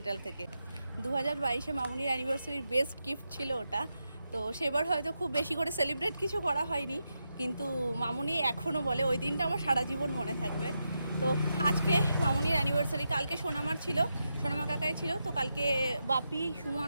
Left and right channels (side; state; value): both; inverted; correlation -0.86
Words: থেকে। 2022-এ মামুনির অ্যানিভার্সারির বেস্ট গিফট ছিল ওটা। তো সেবার হয়তো খুব বেশি করে সেলিব্রেট কিছু করা হয়নি, কিন্তু মামুনি এখনও বলে ওই দিনটা আমার সারা জীবন মনে থাকবে। তো আজকে মামুনির অ্যানিভার্সারি, কালকে সোনামার ছিল, সোনামা কাকাই ছিল। তো কালকে বাপি,